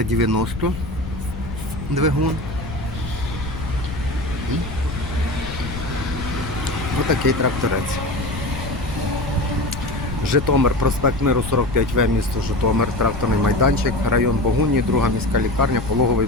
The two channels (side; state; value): left; noise; rumble, 9 dB below the sound